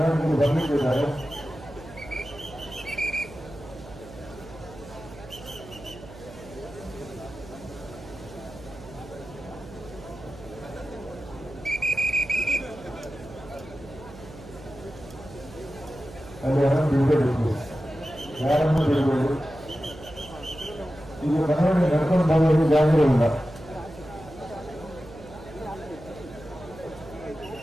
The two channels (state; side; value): noise; right; hum, 17 dB below the sound